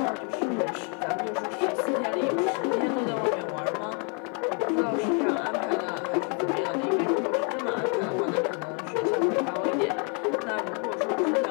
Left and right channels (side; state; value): right; quieter; 38.3 dB